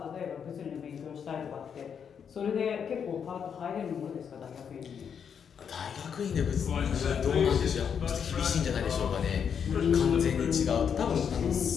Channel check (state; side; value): quieter; right; 7.4 dB